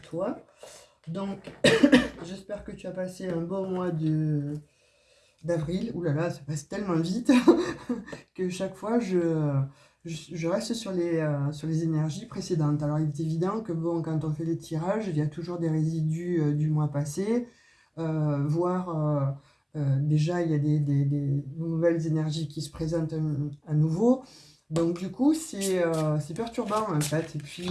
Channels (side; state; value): both; identical; correlation 1.00